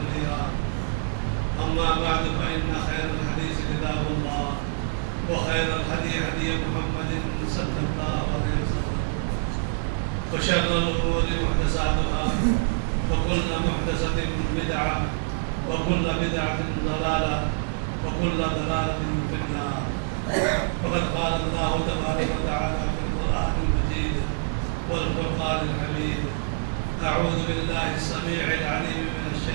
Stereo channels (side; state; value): left; silent; digital silence